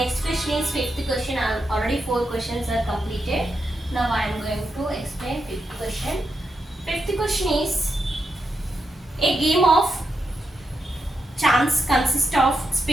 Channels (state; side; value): normal; both; correlation 0.85